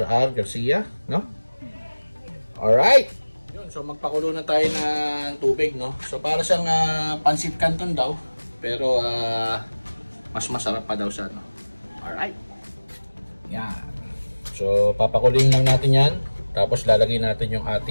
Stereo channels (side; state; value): both; inverted; correlation -1.00